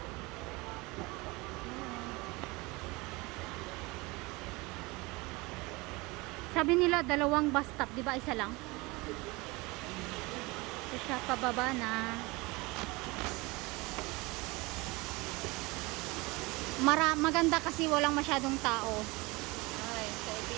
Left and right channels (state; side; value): quieter; left; 24.1 dB